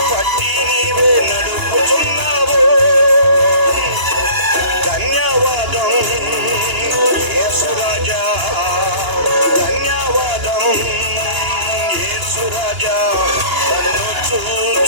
పట్టి నీవే నడుపుచున్నావు. ధన్యవాదం యేసు రాజా, ధన్యవాదం యేసు రాజా, నన్ను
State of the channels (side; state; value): left; late; 2.9 ms